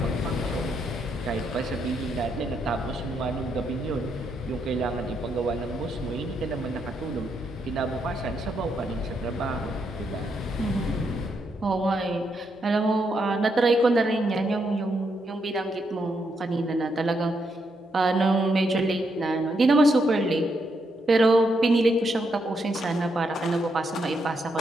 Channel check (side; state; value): both; normal; correlation 0.79